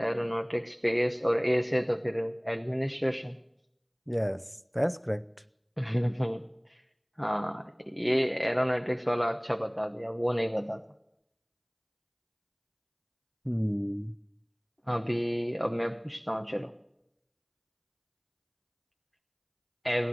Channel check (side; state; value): both; identical; correlation 1.00